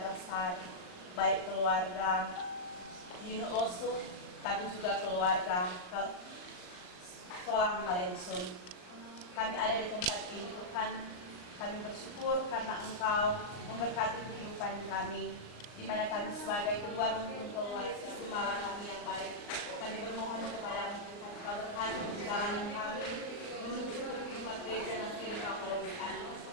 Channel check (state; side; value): late; right; 39 ms